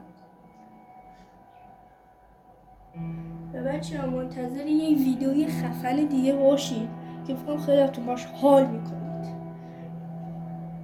و بچه منتظر یک ویدیوی خفن دیگه باشید که فکرم خیلی تو باش حال میکنید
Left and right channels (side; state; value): both; identical; correlation 1.00